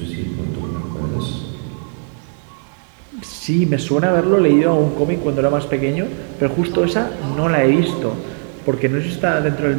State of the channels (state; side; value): silent; left; 55 dB below the other